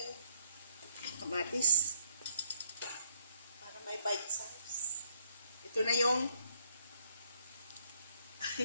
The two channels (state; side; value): inverted; both; correlation -0.68